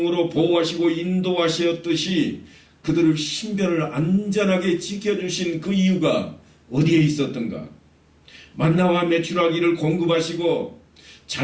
보호하시고 인도하셨듯이 그들을 신변을 안전하게 지켜주신 그 이유가 어디에 있었던가? 만나와 메추라기를 공급하시고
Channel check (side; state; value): both; identical; correlation 1.00